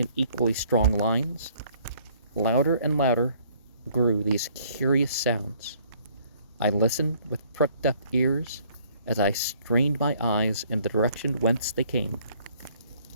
equally strong lines. Louder and louder grew these curious sounds. I listened with pricked up ears as I strained my eyes in the direction whence they came,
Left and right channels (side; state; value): both; inverted; correlation -0.61